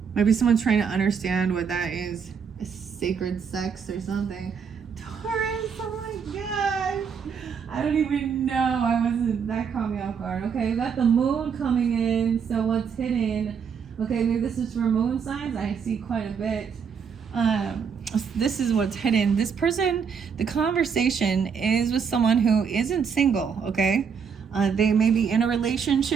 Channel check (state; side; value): quieter; left; 6.6 dB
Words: Maybe someone's trying to understand what that is. A sacred sex or something. Taurus, oh my god. I don't even know. That caught me off guard. Okay, we got the moon coming in. So what's hidden? Okay, maybe this is for moon signs. I see quite a bit. This is what's hidden. This person, the conversation is with someone who isn't single, okay? They may be in a